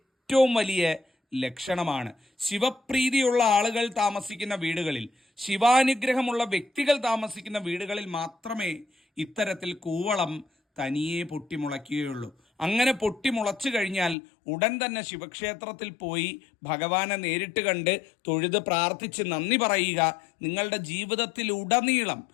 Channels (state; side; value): drops out; right; at 14.2 s